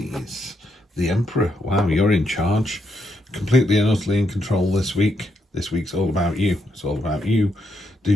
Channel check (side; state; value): both; normal; correlation 0.79